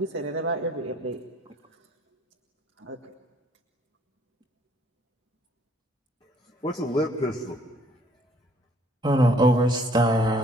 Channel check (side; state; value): both; normal; correlation 0.61